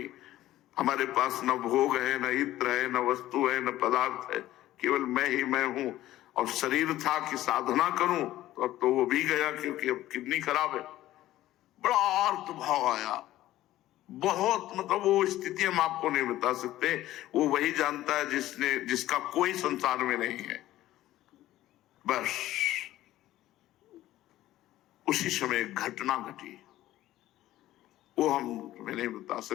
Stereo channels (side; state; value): right; quieter; 14.8 dB